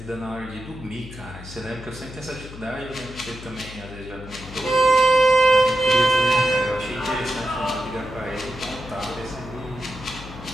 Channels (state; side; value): noise; left; hum, 14 dB below the sound